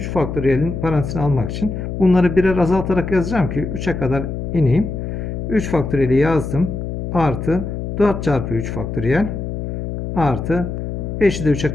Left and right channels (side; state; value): left; noise; hum, 5 dB below the sound